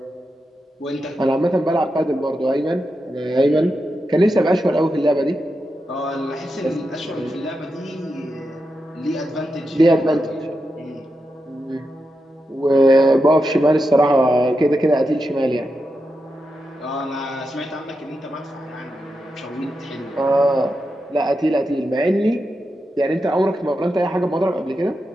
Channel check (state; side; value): normal; both; correlation 0.88